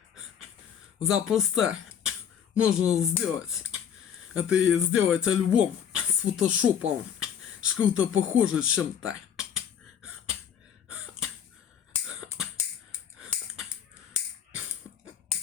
Запросто можно сделать. Это и сделать альбом с фотошопом. Что-то похоже чем-то.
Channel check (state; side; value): quieter; right; 8.5 dB